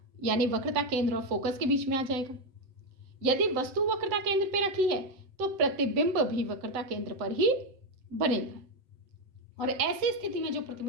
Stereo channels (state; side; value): late; left; 7.8 ms